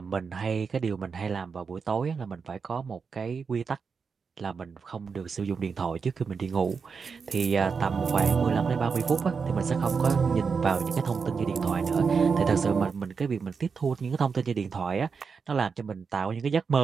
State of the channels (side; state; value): left; quieter; 5.5 dB